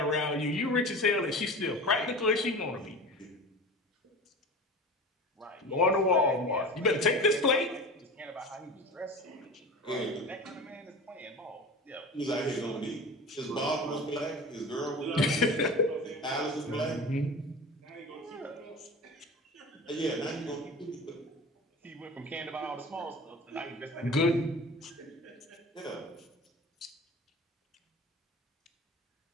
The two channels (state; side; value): normal; both; correlation 0.34